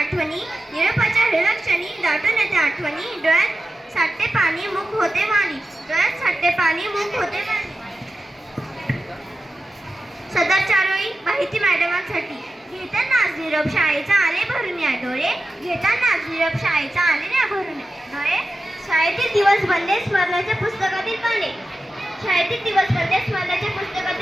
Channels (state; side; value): normal; both; correlation 0.93